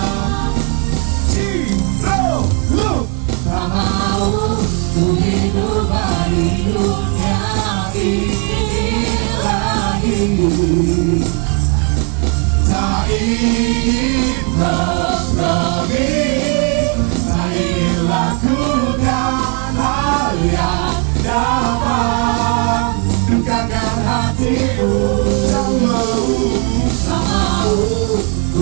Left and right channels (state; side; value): quieter; left; 37.3 dB